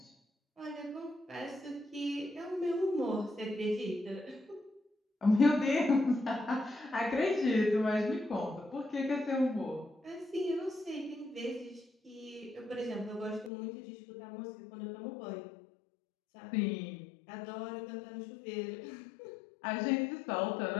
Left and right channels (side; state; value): right; drops out; at 13.5 s